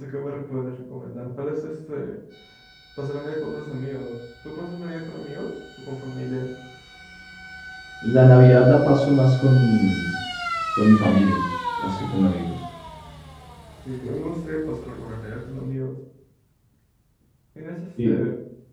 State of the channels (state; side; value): identical; both; correlation 1.00